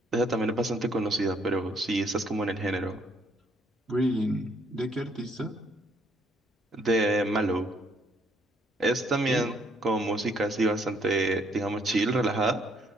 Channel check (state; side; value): normal; both; correlation 0.67